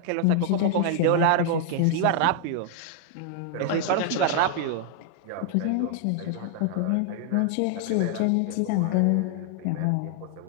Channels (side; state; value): both; different; correlation 0.00